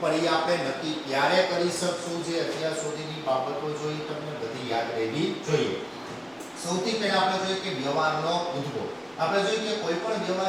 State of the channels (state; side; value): identical; both; correlation 1.00